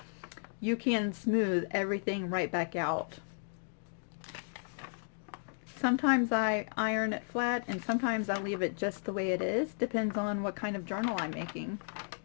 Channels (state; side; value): silent; right; digital silence